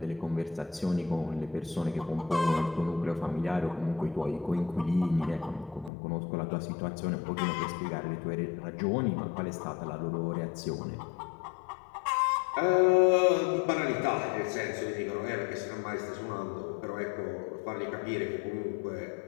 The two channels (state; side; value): drops out; right; at 5.9 s